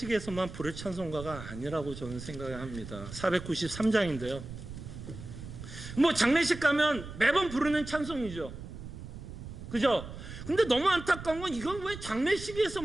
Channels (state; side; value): noise; right; rumble, 11 dB below the sound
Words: 부를 찬송가가 아니라고 저는 생각을 합니다. 493장인데요. 뭐 장례식 가면 매번 부르는 찬송이죠. 그죠? 근데 너무 안타까운 건 이건 왜